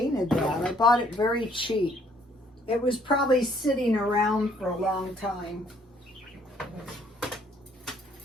that. I bought it very cheap. It was probably sitting around for a long time.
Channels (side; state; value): both; normal; correlation 0.64